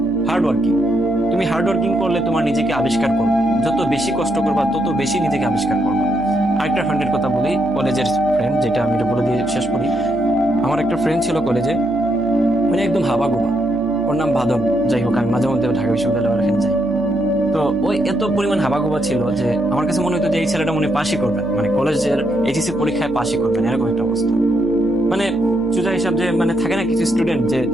hard working. তুমি হার্ড ওয়ার্কিং করলে তোমার নিজেকে আবিষ্কার করবে, যত বেশি কষ্ট করবা তত বেশি নিজেকে আবিষ্কার করবা। আরেকটা ফ্রেন্ডের কথা বলি, কলেজের ফ্রেন্ড, যেটা আমি এটা বলে দিয়ে শেষ করি। আমার একটা ফ্রেন্ড ছিল কলেজে, মানে একদম হাবাগোবা, ওর নাম বাদন। যাই হোক, আমি মাঝে মধ্যে ঢাকা বিশ্ববিদ্যালয়ের এখানে যাই। তো ওই এত পরিমাণ হাবাগোবা ছিল যে আমার কাছে মনে হতো যে এই ছেলেটা মনে পাশই করবেন, মানে কলেজের এইচএসসি পরীক্ষায় পাশই করবেন, এরকম একটা অবস্থা। মানে সোজা হিসাব যে মানে থাকে না কিছু স্টুডেন্ট যে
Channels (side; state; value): left; noise; hum, 16 dB below the sound